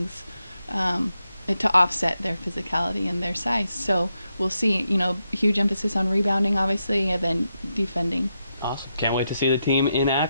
to offset their physicality and their size. So we'll see. Huge emphasis on rebounding, obviously, and then defending. Awesome. Can't wait to see the team in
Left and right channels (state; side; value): inverted; both; correlation -0.84